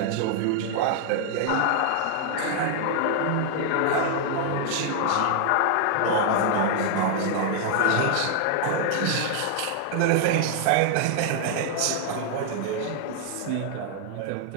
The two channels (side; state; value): both; different; correlation 0.00